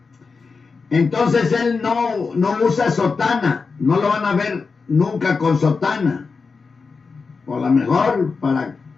entonces él no usa sotana, no lo van a ver nunca con sotana. O a lo mejor para,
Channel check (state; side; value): quieter; right; 4.7 dB